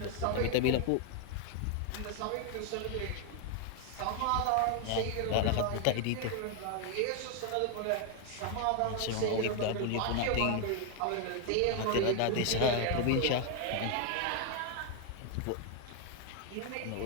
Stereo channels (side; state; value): both; different; correlation 0.01